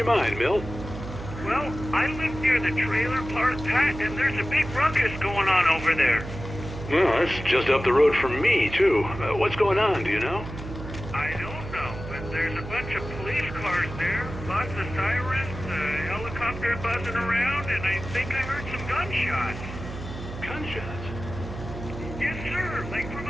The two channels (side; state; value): right; noise; hum, 10 dB below the sound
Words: mind, Milt? Well, I live near the trailer park, Pat, and there's a big ruckus going on over there. Well, that's just up the road from me, too. What's going on, do you know? I don't know, but there's a bunch of police cars there, lots of sirens, a helicopter buzzing around, and I think I heard some gunshots. Gunshots? Yes, sir, like from